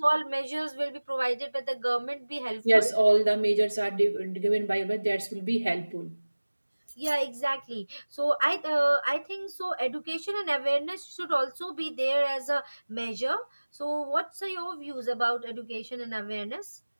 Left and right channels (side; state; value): both; inverted; correlation -1.00